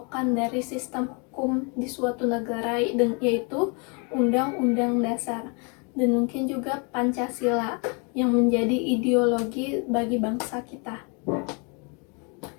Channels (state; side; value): quieter; right; 33.9 dB